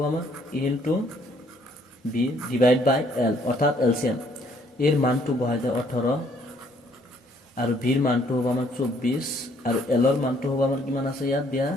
আমাৰ A into B divide by L অর্থাৎ এলসিএম। এর মানটো বহাই দেয় 18 আর ভির মানটো হ'ব আমার 24 আর এলর মানটো হ'ব আমার কিমান আছে ইয়াত দিয়া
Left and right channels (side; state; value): both; normal; correlation 0.65